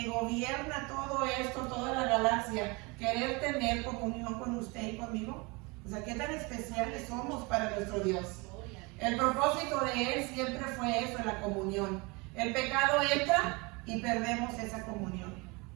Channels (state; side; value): quieter; left; 27.1 dB